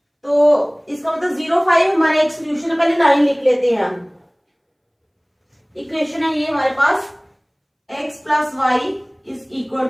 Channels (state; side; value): identical; both; correlation 1.00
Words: तो इसका मतलब 0 5 हमारा एक सोल्यूशन है। पहले लाइन लिख लेते हैं हम। इक्वेशन है ये हमारे पास, x plus Y is equal